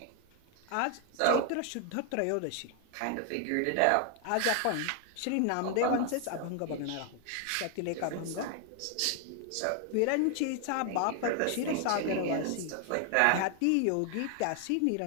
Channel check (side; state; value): both; different; correlation 0.00